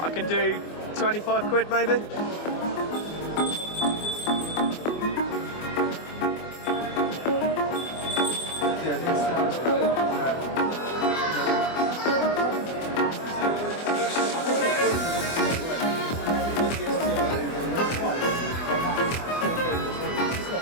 I can do 25 quid maybe.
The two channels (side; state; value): right; late; 24 ms